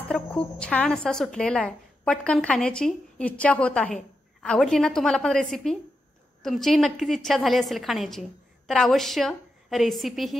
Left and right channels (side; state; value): both; normal; correlation 0.86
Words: तर खूप छान असा सुटलेला आहे. पटकन खाण्याची इच्छा होत आहे. आवडली ना तुम्हाला पण रेसिपी? तुमचीही नक्कीच इच्छा झाली असेल खाण्याची. तर अवश्य रेसिपी